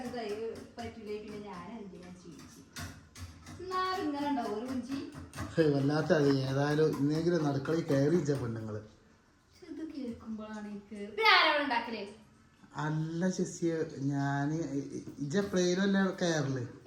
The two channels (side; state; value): both; identical; correlation 1.00